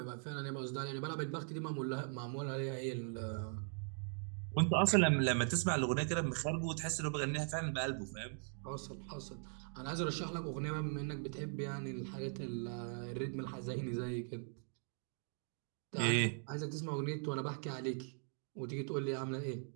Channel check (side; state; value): left; silent; 51 dB below the other